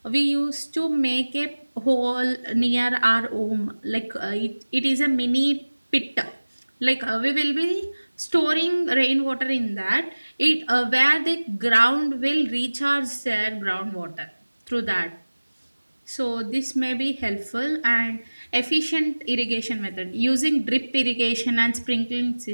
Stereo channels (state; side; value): inverted; both; correlation -1.00